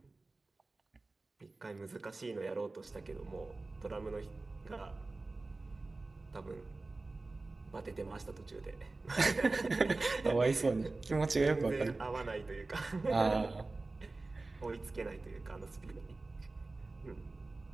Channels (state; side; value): quieter; left; 3.3 dB